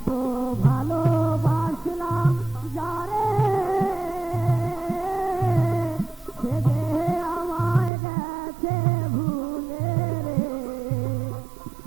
ভালোবাসলাম যারে সে যে আমায় গেছে ভুলে রে।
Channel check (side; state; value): left; drops out; at 7.9 s